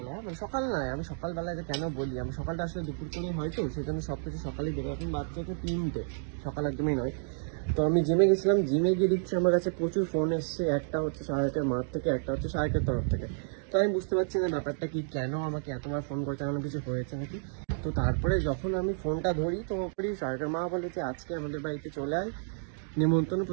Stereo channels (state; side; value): silent; left; digital silence